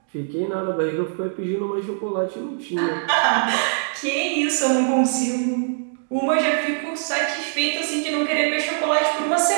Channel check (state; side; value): silent; left; digital silence